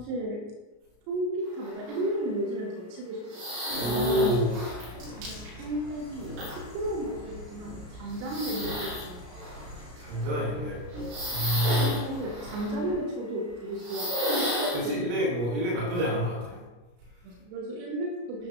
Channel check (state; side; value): late; left; 33 ms